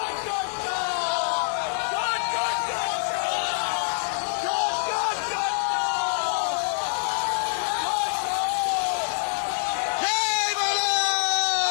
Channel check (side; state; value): right; silent; 61 dB below the other